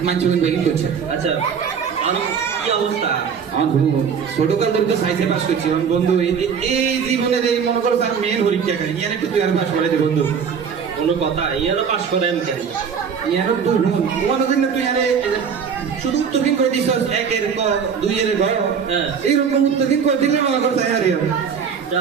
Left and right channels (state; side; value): quieter; left; 6.8 dB